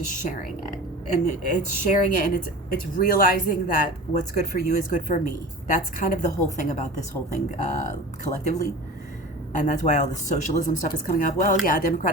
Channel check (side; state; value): both; normal; correlation 0.36